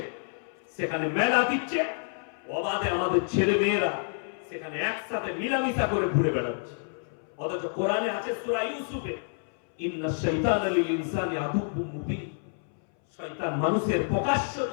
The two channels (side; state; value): right; silent; 59 dB below the other